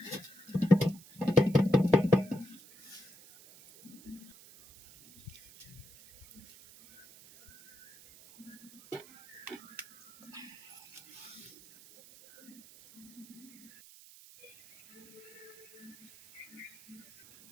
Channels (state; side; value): noise; right; hiss, 21 dB below the sound